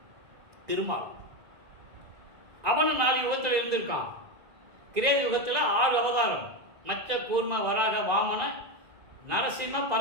திருமால். அவனும் 4 யுகத்தில் இருந்திருக்கான். கிரேத யுகத்தில் 6 அவதாரம், மச்ச கூர்ம வராக வாமன நரசிம்ம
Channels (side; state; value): left; late; 2.0 ms